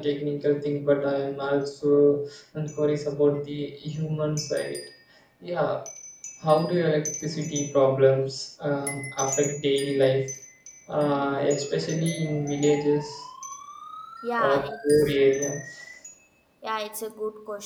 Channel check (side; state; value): both; identical; correlation 1.00